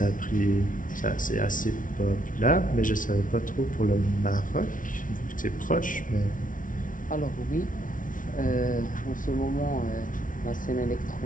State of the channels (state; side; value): late; right; 0.38 ms